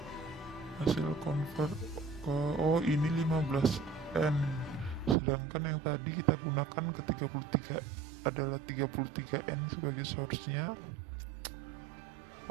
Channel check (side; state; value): left; drops out; at 5.2 s